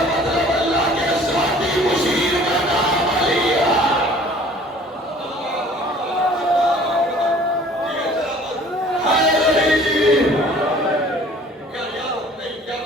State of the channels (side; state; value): both; normal; correlation 0.51